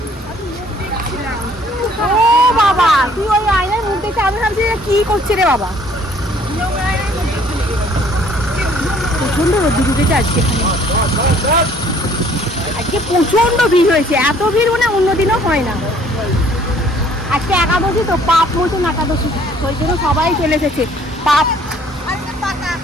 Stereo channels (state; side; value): normal; both; correlation 0.58